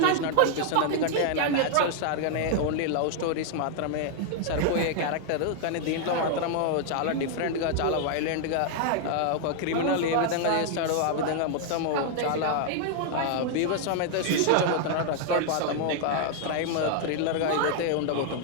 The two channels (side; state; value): both; different; correlation 0.00